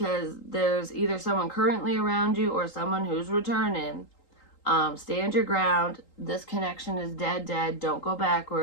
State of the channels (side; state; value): right; late; 3.8 ms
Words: there's either someone currently around you or someone who's returning. Stand your ground. This connection is dead. Don't go